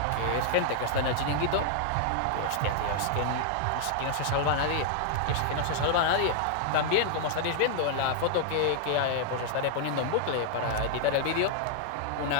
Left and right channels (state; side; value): different; both; correlation -0.01